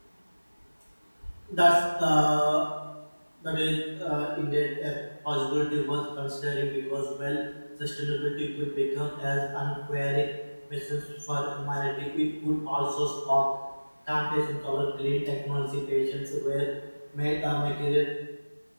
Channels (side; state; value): both; inverted; correlation -1.00